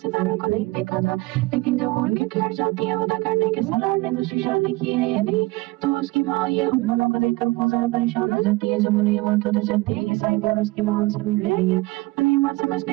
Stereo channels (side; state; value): left; quieter; 21.6 dB